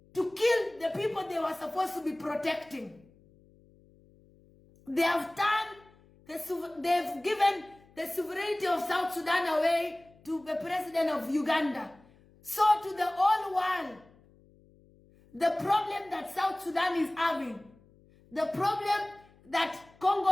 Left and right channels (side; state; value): left; noise; hum, 28 dB below the sound